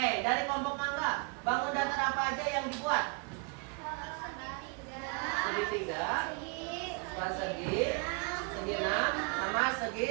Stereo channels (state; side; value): quieter; left; 33.8 dB